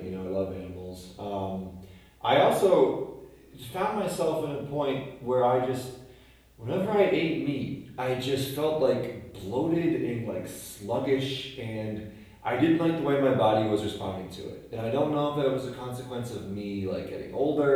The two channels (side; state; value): both; identical; correlation 1.00